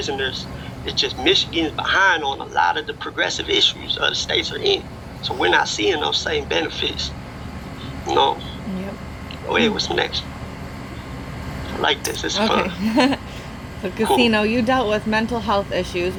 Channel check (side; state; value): both; identical; correlation 1.00